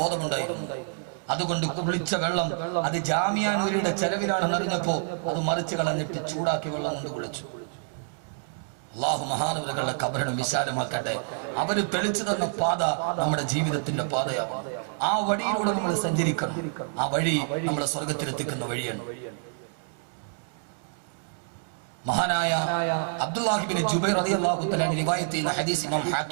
അതുകൊണ്ട് കുളിച്ച വെള്ളം അത് ജാമിയ നൂരിയുടെ ചെലവിലാണെന്ന് അറിഞ്ഞപ്പോ അത് മറിച്ച് കളഞ്ഞിട്ട് ചൂടാക്കി വെള്ളം കൊണ്ട് കുളിച്ചു. അള്ളാഹു മഹാനവറുകളുടെ ഖബറിനെ വിശാലമാക്കട്ടെ. അവര് തെളിച്ചു തന്ന പാത നമ്മുടെ ജീവിതത്തിന്റെ പാതയാണ്. ആ വഴിയിലൂടെ നമ്മൾ സഞ്ചരിക്കണം. ആ വഴി നമ്മളെ സ്വർഗത്തിലെത്തിക്കുന്ന വഴിയാണ്. മഹാനായ അബ്ദുല്ലാഹി ഇബ്നു ജുബൈർ റളിയല്ലാഹു തആല റിവായത്ത് ചെയ്യുന്ന ഹദീസ് ഇമാം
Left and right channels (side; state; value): left; silent; digital silence